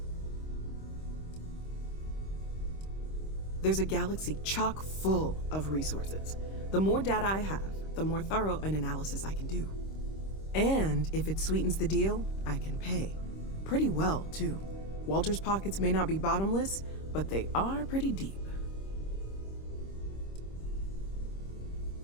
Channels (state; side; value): late; right; 26 ms